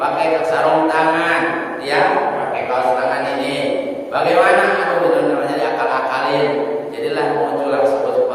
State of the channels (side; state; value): both; identical; correlation 1.00